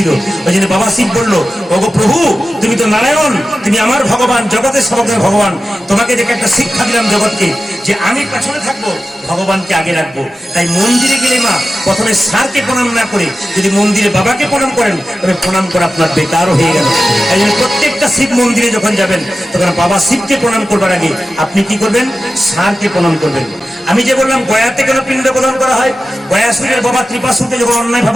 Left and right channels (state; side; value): normal; both; correlation 0.93